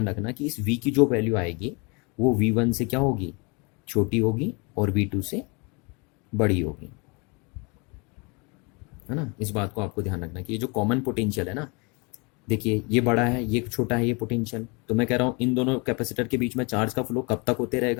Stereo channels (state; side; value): quieter; right; 30.4 dB